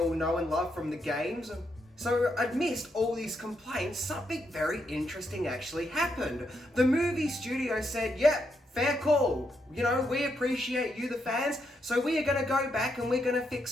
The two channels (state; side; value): normal; both; correlation 0.80